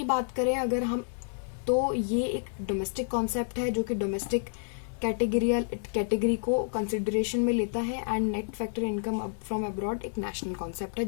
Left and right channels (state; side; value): silent; right; digital silence